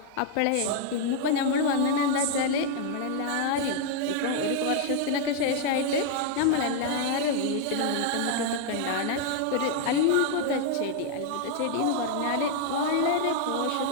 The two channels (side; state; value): both; different; correlation 0.00